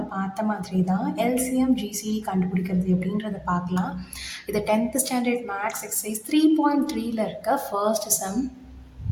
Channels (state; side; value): identical; both; correlation 1.00